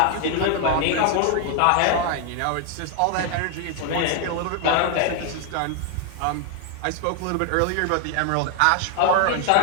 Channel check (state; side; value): different; both; correlation 0.00